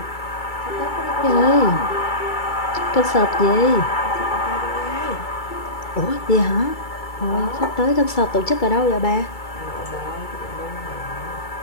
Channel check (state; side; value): late; right; 2.3 ms